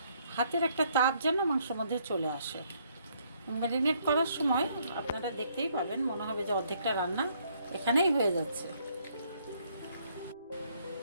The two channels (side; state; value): both; inverted; correlation -0.68